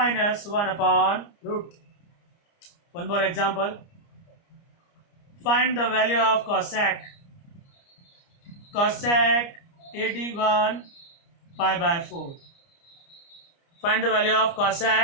One more example, find the value of cosec 81 pi by 4। Find the value of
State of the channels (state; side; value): late; right; 29 ms